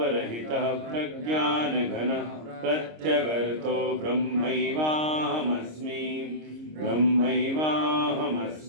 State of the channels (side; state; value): left; late; 26 ms